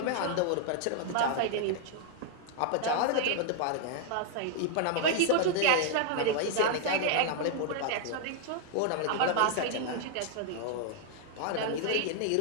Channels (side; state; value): both; different; correlation 0.00